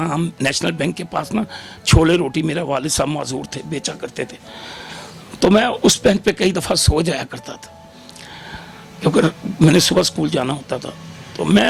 हम नेशनल बैंक के पास ना छोले रोटी मेरा वालिद साहब माजूर थे, बेचा करते थे। तो मैं उस बैंक पे कई दफ़ा सो जाया करता था क्योंकि मैंने सुबह स्कूल जाना होता था। तो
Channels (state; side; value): identical; both; correlation 1.00